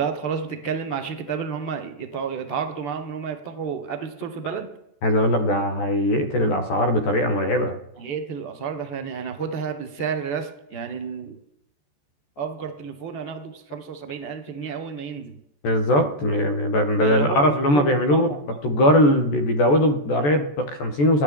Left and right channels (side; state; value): right; late; 14 ms